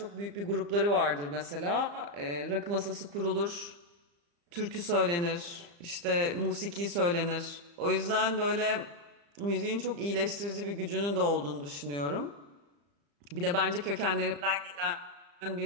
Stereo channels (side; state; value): left; late; 35 ms